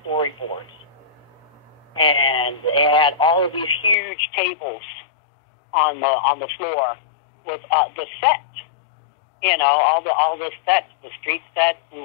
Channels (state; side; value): drops out; right; at 4.0 s